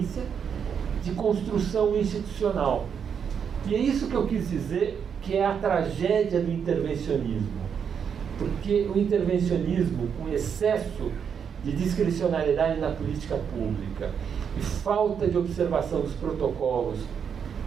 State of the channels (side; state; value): left; quieter; 7.3 dB